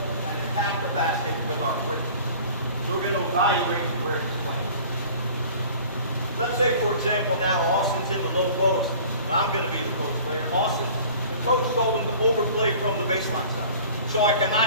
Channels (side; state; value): both; inverted; correlation -0.46